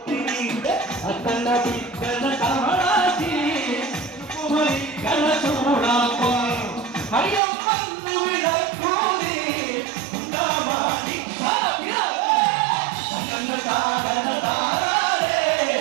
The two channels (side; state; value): left; drops out; at 7.4 s